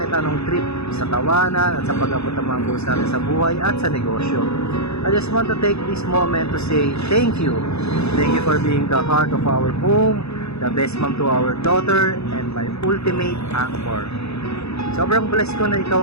anong trip, sa tawanan at sa pag-abot ng mga goals natin sa buhay at sa negosyo. I just want to take this moment to say thank you. Thank you for being the heart of our home, the best mom to our daughter, and my ultimate anchor. Sobrang blessed ko na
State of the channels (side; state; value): right; late; 0.79 ms